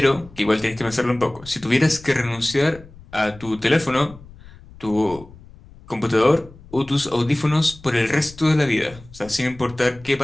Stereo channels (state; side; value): noise; left; rumble, 21 dB below the sound